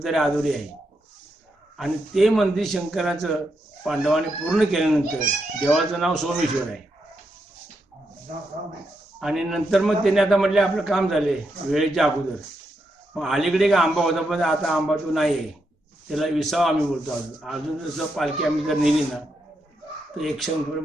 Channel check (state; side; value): normal; both; correlation 0.82